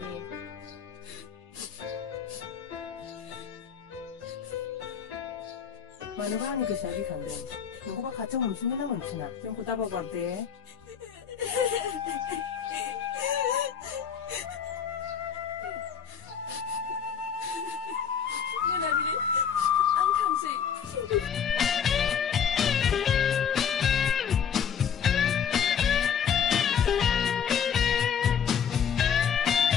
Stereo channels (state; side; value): quieter; right; 7.8 dB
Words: बे मानोबा आंनि गोसोआ गिखांदों नोंखौबा खाथियाव मोनफिनगोन ना मोनफिना जोंखौ दाबावगार दे आं थांसै